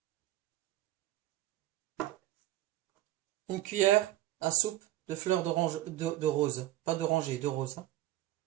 une cuillère à soupe de fleurs d'orange, de rose, pas d'oranger, de rose, hein.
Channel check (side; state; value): left; quieter; 15.0 dB